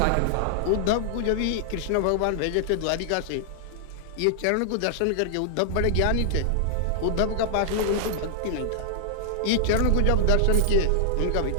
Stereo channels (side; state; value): both; different; correlation -0.01